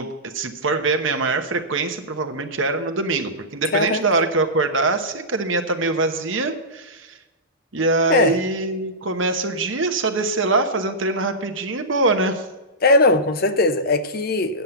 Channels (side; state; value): both; normal; correlation -0.15